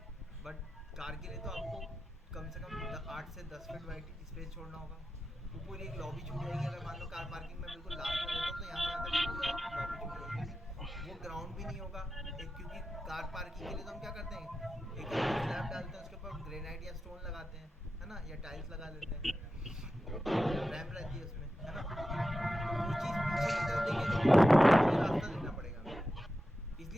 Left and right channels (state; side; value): normal; both; correlation 0.91